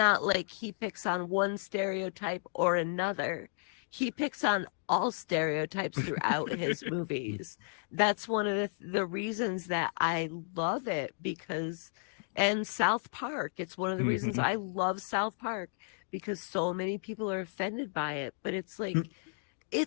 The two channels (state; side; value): silent; right; digital silence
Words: like he picks on one stereotype or another. He picks on all stereotypes throughout his movies. That's one of the reasons that I love it and South Park. It's one of the reasons I love South Park because so many people are offended by it. But it's like,